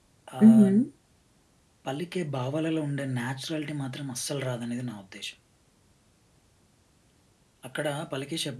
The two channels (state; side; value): identical; both; correlation 1.00